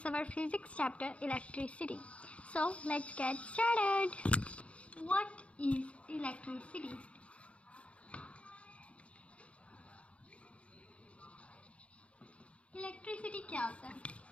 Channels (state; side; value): late; right; 0.062 ms